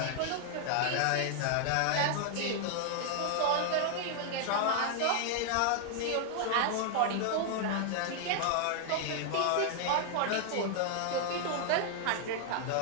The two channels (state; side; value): different; both; correlation 0.00